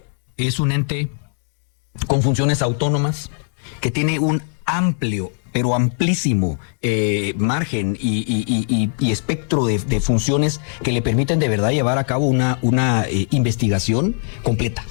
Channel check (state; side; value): silent; right; digital silence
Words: es un ente con funciones autónomas que tiene un amplio, pero amplísimo margen y espectro de funciones que le permiten de verdad llevar a cabo una investigación completa.